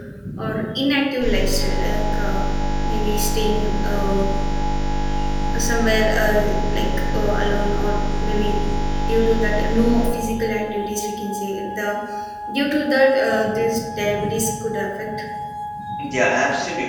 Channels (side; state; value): both; identical; correlation 1.00